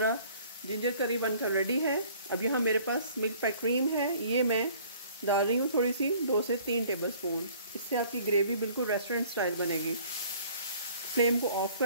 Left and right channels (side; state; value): both; inverted; correlation -0.54